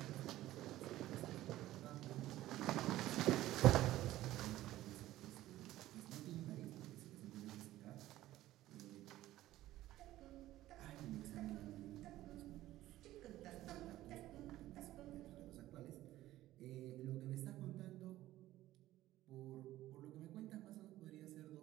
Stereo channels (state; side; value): quieter; left; 15.1 dB